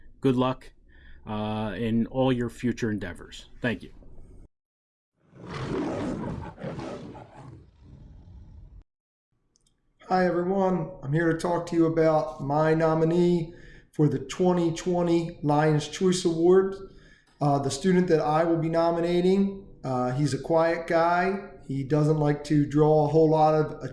Good luck in all your future endeavors. Thank you. Hi everyone, I'm here to talk to you about my nominee for the 2020 Lions Choice Award. The student that I will be nominating, he's a quiet guy. He doesn't like to draw a whole lot of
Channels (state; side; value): identical; both; correlation 1.00